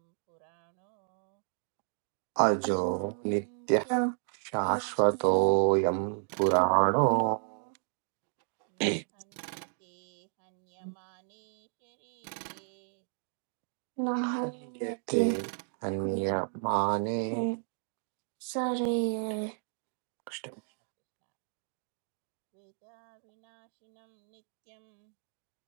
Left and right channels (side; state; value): left; silent; 56 dB below the other